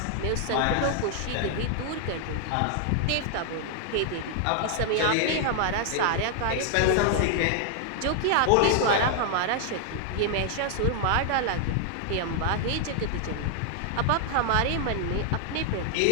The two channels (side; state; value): both; different; correlation 0.00